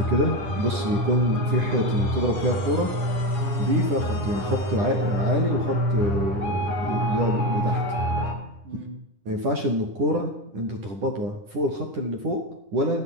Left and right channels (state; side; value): late; left; 10 ms